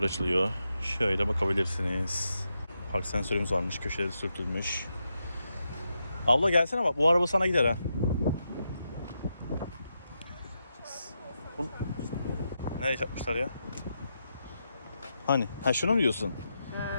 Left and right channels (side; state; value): both; inverted; correlation -0.85